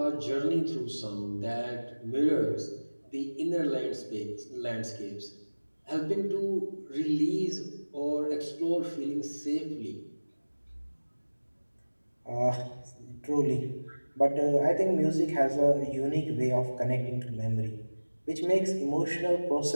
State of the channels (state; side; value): inverted; both; correlation -1.00